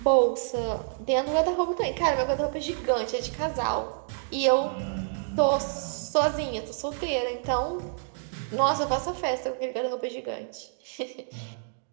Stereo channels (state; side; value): silent; left; digital silence